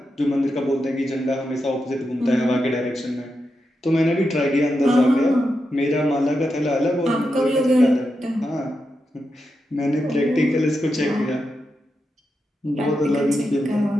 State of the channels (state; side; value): normal; both; correlation 0.87